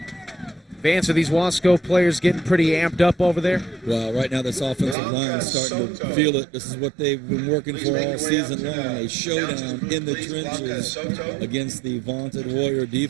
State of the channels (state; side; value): drops out; left; at 5.0 s